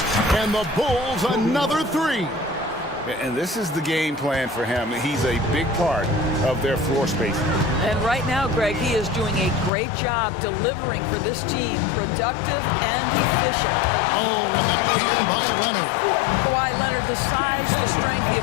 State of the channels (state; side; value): drops out; right; at 9.7 s